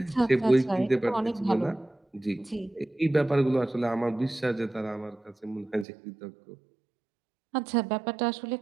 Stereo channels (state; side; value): drops out; left; at 5.9 s